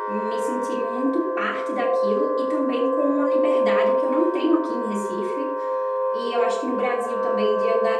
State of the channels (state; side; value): identical; both; correlation 1.00